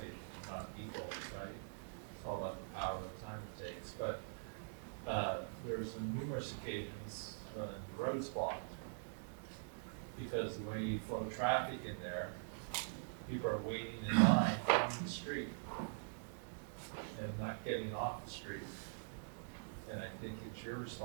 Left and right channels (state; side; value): silent; left; digital silence